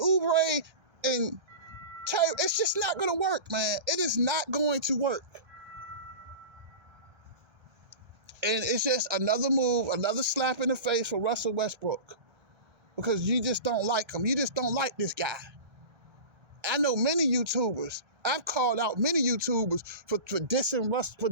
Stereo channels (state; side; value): late; left; 1.2 ms